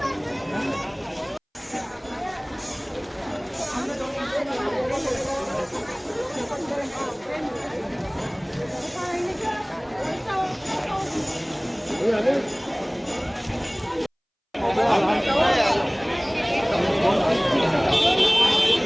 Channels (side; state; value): both; identical; correlation 1.00